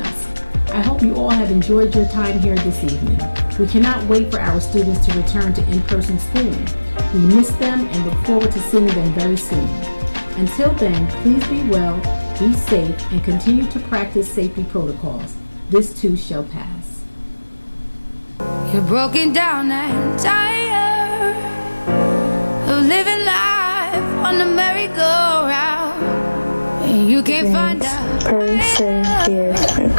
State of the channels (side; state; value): both; inverted; correlation -1.00